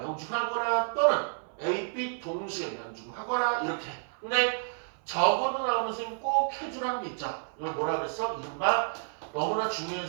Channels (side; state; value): left; silent; 58 dB below the other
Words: 또는 A, B 동시에 명중하거나 이렇게. 근데 적어도 나오는 선생님 꼭 해주라는 게 있죠. 이걸 뭐라 그랬어? 이른바 너무나